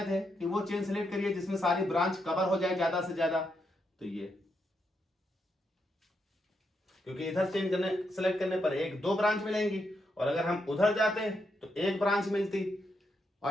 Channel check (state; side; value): normal; both; correlation 0.81